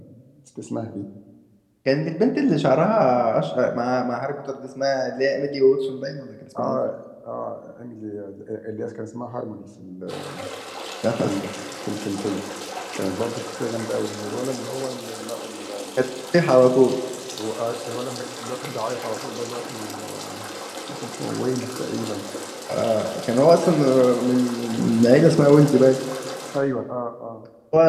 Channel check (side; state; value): both; identical; correlation 1.00